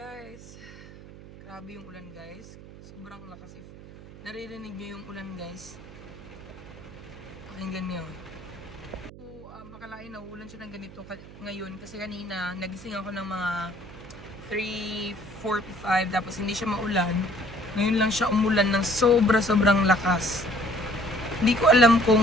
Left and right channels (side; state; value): right; noise; hum, 17 dB below the sound